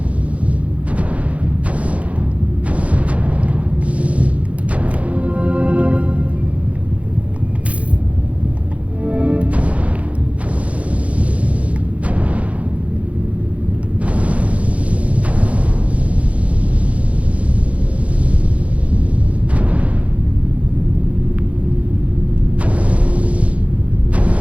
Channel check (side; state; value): left; late; 0.065 ms